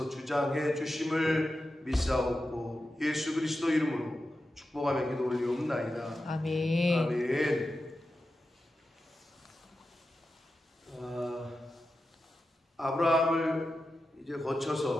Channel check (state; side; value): normal; both; correlation 0.91